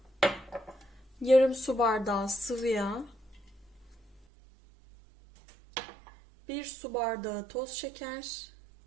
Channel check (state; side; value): drops out; left; at 4.2 s